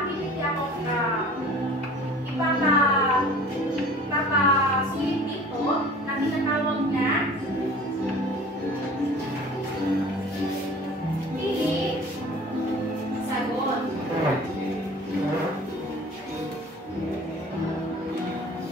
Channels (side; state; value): both; normal; correlation 0.45